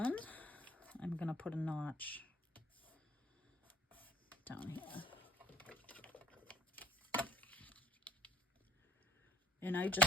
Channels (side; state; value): both; normal; correlation 0.57